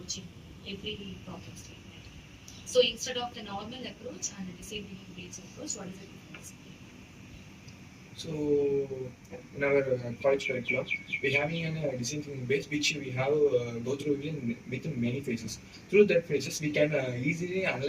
in every problem statement? So instead of the normal approach and the design thinking based approach, what is the difference? So in our college curriculum, we have a design thinking base which we have go through within many phases. Through that phases, we can easily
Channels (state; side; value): identical; both; correlation 1.00